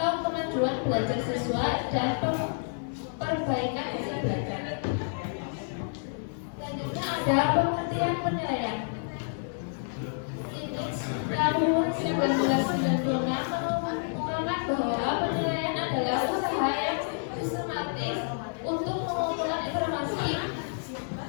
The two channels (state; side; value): silent; right; digital silence